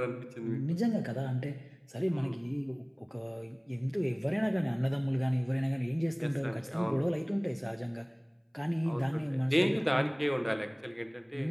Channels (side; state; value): both; identical; correlation 1.00